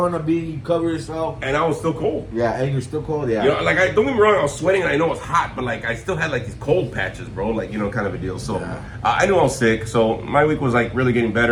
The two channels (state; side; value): identical; both; correlation 1.00